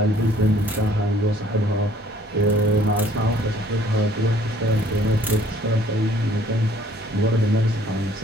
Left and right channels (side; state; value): both; normal; correlation 0.58